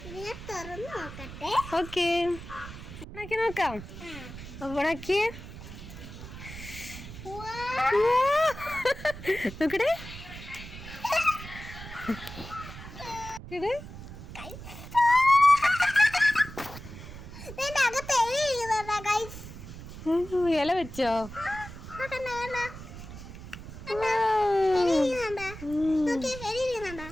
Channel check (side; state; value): right; noise; rumble, 13 dB below the sound